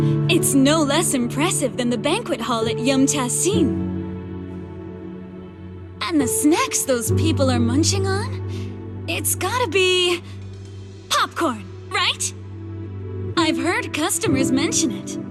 It's no less impressive than the banquet hall at Yum Tassin. And the snacks those people are munching on? It's gotta be... popcorn, right? I've heard customers mention it,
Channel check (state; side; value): identical; both; correlation 1.00